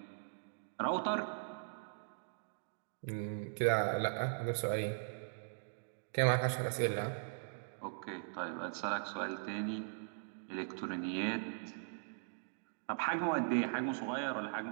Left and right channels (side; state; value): left; silent; digital silence